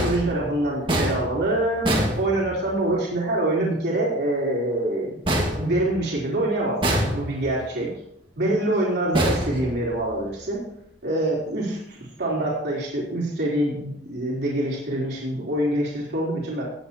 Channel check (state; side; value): normal; both; correlation 0.41